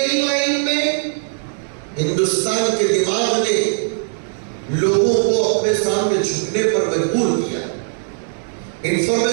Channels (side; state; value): left; silent; digital silence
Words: لائن میں ہندوستان کے دماغ نے لوگوں کو اپنے سامنے جھکنے پر مجبور کیا.